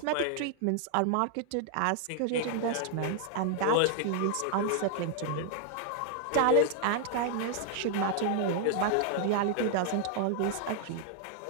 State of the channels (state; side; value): different; both; correlation 0.00